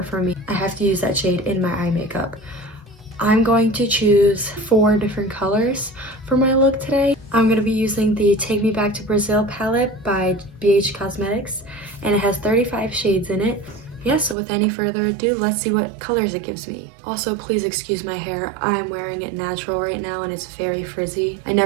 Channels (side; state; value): left; drops out; at 14.4 s